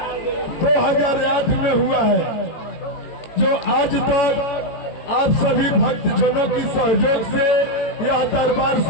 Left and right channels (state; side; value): late; right; 18 ms